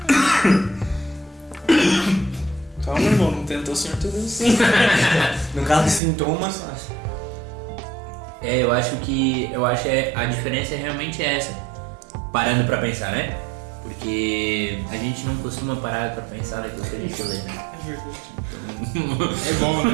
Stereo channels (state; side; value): drops out; left; at 6.0 s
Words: Calma, irmão, não tentou o Senhor teu Deus. No caso de sintomas, Eu acho que a diferença realmente é essa. Parando pra pensar, né? Porque a gente não costuma parar pra pensar naquilo que a gente lê, né? É verdade. É bom,